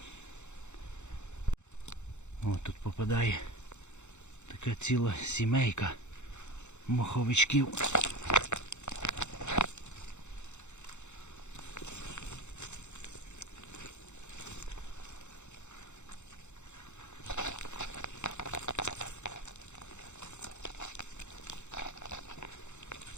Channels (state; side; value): late; right; 0.83 ms